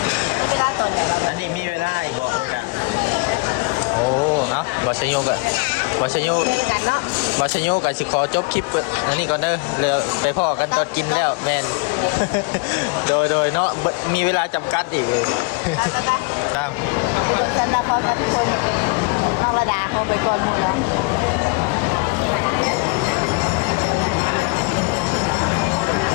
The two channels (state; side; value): quieter; right; 30.5 dB